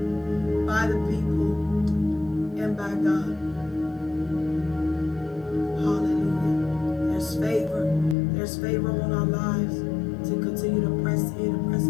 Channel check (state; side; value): drops out; right; at 8.2 s